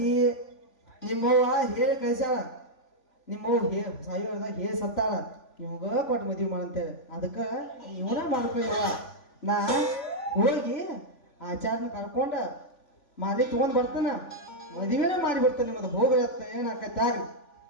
ನಿಮ್ಮವ್ವ ಹೇಳಿ ಕಳ್ಸ್ಯಾಳ, ನಿಮ್ಮವ್ವ ಸಾಯು ಹೇಳಿದಾಗ ಹೇಳಿ ಸತ್ತಾಳ ನಿಮ್ಗ ಕೊಟ್ಟು ಮದುವೆ ಮಾಡಂತೇಳಿ. ಅದಕ್ಕೆ ಇವನ ಮಾಡ್ಕೊಳ್ಳ. ನಾ ಹೋಗಿ ಆಚಾರನ ಕರ್ಕೊಂಡ ಮಾಲಿ ತಗೊಂಡ್ ಬರ್ತಾನ, ಮದುವೆನೇ ಮಾಡಿ ಬಿಡ್ತಾನೆ. ನಿಮ್ಮದು ಹೋಗತ್ತ ಏನಾಕೈತೆ ಆಗ್ಲಿ.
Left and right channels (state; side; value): late; right; 3.5 ms